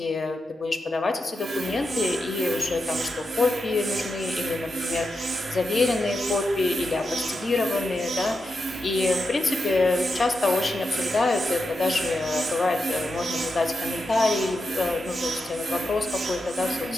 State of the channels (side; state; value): both; normal; correlation 0.87